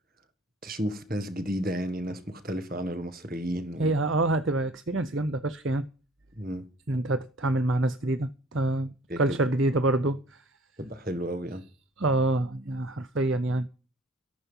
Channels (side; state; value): both; normal; correlation 0.52